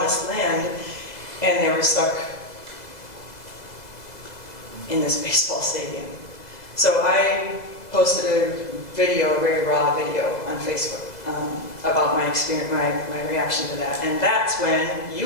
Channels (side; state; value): right; late; 2.0 ms